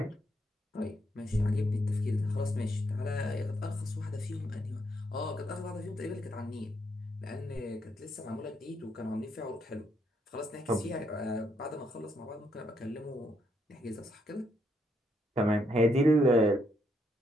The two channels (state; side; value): normal; both; correlation 0.75